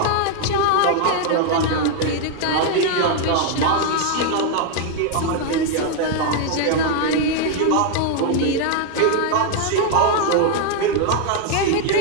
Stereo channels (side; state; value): both; different; correlation 0.00